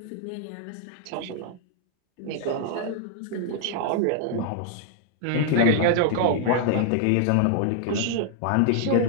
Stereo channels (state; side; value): different; both; correlation 0.00